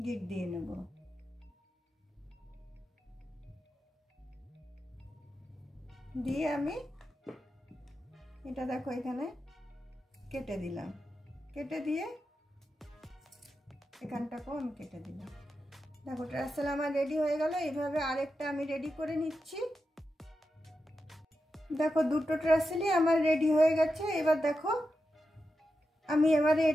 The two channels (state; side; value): normal; both; correlation 0.89